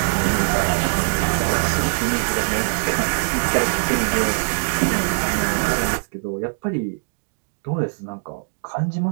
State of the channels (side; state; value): left; silent; digital silence